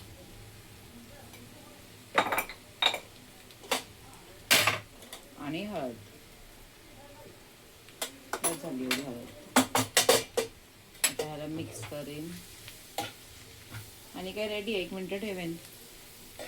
आणि हळद. झाली एवढी हळद. आता ह्याला मिक्स करेन आणि काय रेडी. 1 मिनिट ठेवेन.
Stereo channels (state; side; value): identical; both; correlation 1.00